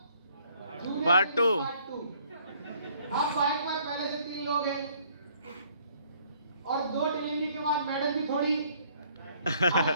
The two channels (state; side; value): inverted; both; correlation -0.62